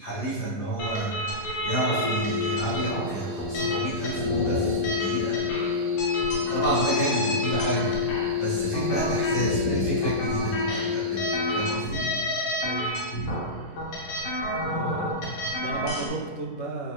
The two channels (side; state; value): right; late; 11 ms